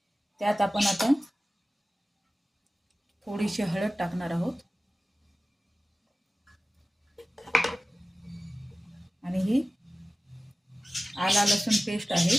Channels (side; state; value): both; normal; correlation 0.96